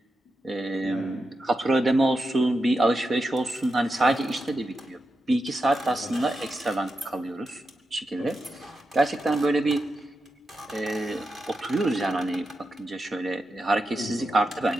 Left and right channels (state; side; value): normal; both; correlation 0.88